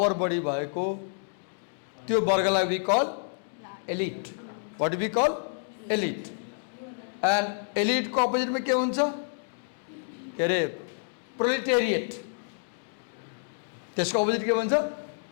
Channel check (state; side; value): silent; right; digital silence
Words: बढी भएको, त्यो वर्गलाई we call elite. What do we call? Elite. And elite को अपोजिट में के हुन्छ? के अरे proletariat. त्यसको अपोजिट के भन्छ?